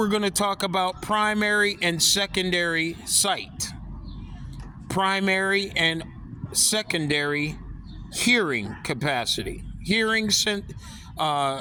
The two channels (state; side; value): identical; both; correlation 1.00